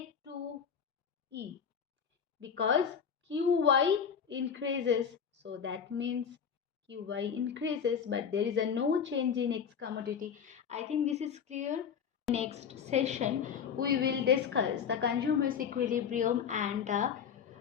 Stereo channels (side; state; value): right; quieter; 7.3 dB